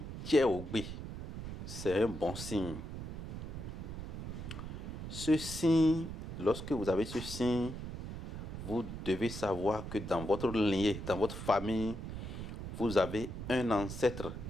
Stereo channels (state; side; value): noise; right; rumble, 7 dB below the sound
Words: Tcheoubé, c'est un bon signe. Ce signe, lorsque vous avez ce signe, vous devez savoir que dans votre lignée, dans votre famille, vous avez un ancêtre,